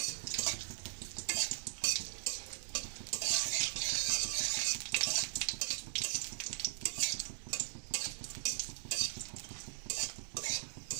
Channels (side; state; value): left; silent; digital silence